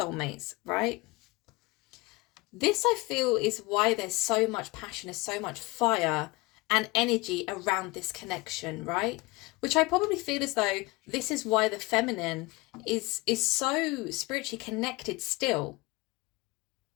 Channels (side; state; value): right; quieter; 23.2 dB